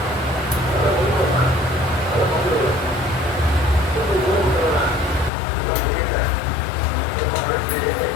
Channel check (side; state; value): right; drops out; at 5.3 s